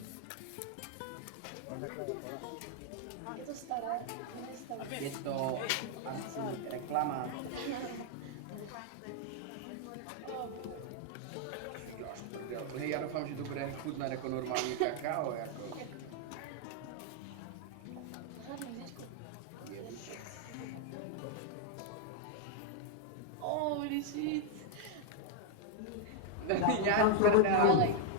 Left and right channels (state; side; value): different; both; correlation 0.00